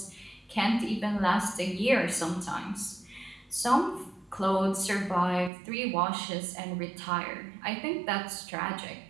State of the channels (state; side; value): drops out; left; at 5.5 s